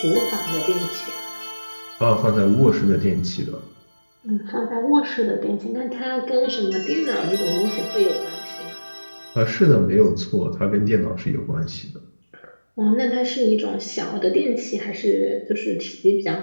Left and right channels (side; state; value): both; inverted; correlation -1.00